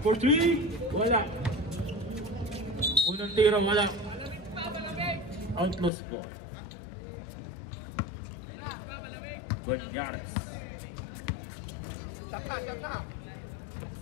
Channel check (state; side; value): drops out; right; at 5.9 s